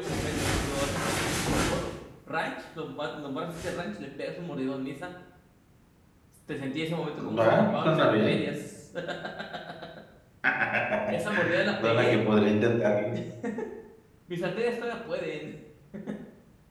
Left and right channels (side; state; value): both; identical; correlation 1.00